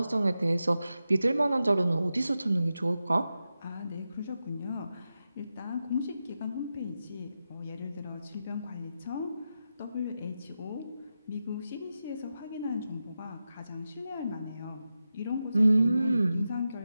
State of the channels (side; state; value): both; inverted; correlation -0.91